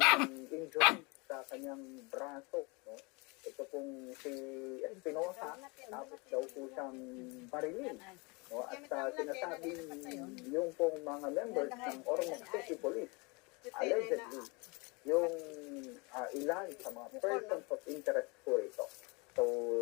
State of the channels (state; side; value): quieter; right; 28.5 dB